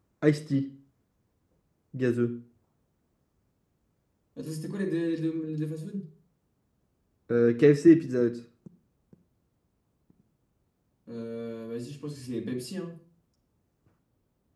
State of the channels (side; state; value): both; identical; correlation 1.00